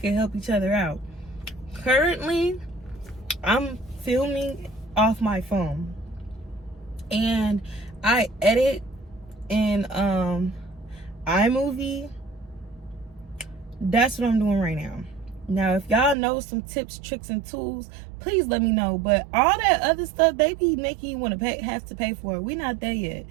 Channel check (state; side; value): drops out; left; at 16.2 s